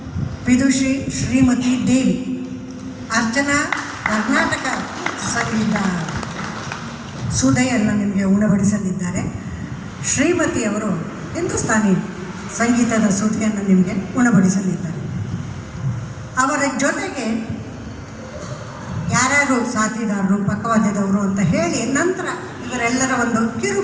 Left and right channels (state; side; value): identical; both; correlation 1.00